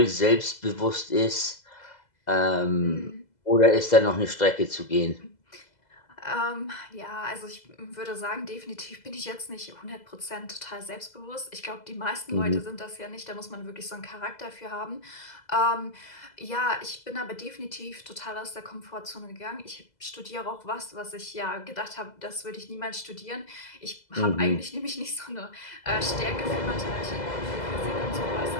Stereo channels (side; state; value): right; late; 2.0 ms